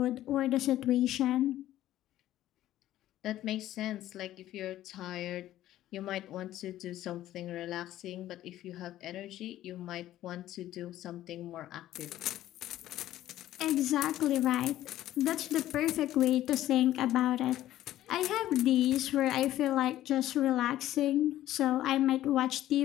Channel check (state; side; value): quieter; right; 13.6 dB